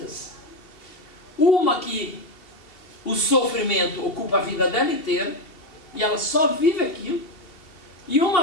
Uma que o sofrimento ocupa a vida dela inteira, e ela só vive aquilo, e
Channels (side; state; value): right; late; 2.8 ms